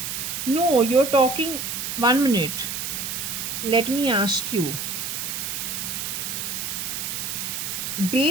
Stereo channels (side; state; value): right; noise; hiss, 4 dB below the sound